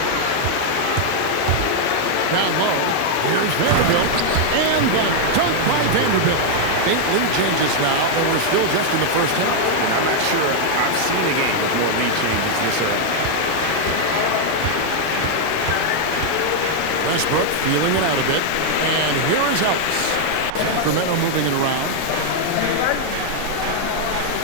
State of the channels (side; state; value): both; different; correlation 0.00